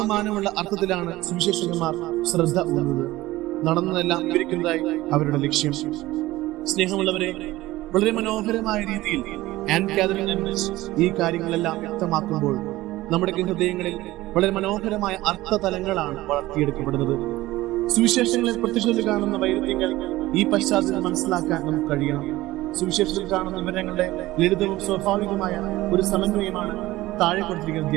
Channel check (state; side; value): quieter; left; 17.5 dB